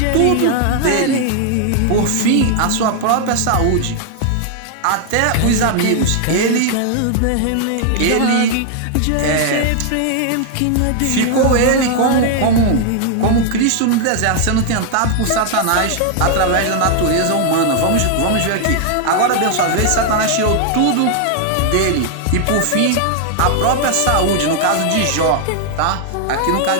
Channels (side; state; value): both; different; correlation 0.00